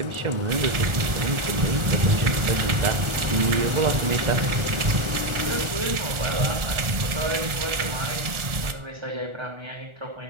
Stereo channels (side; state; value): left; late; 1.4 ms